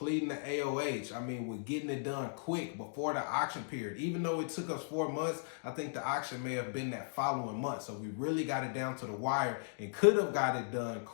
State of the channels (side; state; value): right; silent; digital silence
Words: the AOH. I mean, with getting it done quick before the auction period. Even though it took us 4 months, I think the auction may have been that following month. So we really got it down to the wire and could have got it done